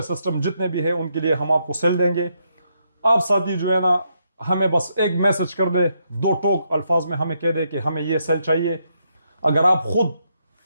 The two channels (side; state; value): both; inverted; correlation -0.78